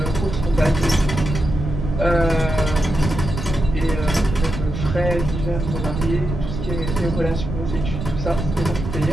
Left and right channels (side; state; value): right; noise; rumble, 5 dB below the sound